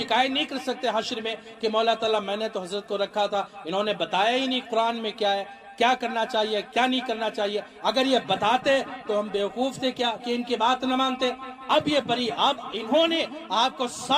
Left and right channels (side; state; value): both; identical; correlation 1.00